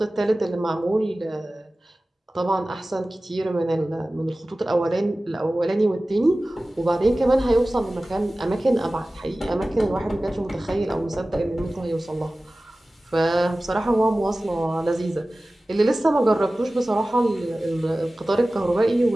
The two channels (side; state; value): both; normal; correlation 0.97